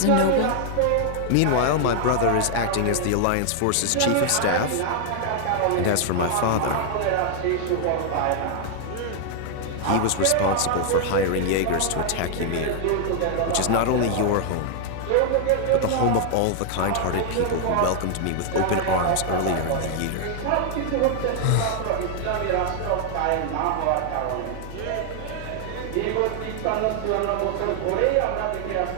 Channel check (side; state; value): both; different; correlation 0.00